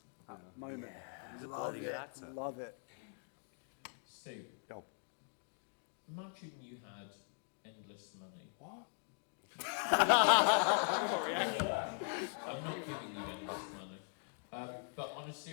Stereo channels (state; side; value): silent; right; 51 dB below the other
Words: moment. He's a Love bloody good it. actor. Love it. Steve, Yo. imagine you had endless money. What? I'm not giving you endless money. But on a